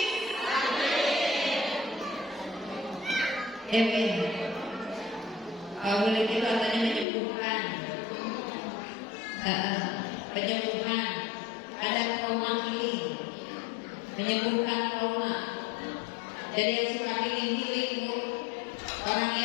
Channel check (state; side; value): drops out; right; at 7.1 s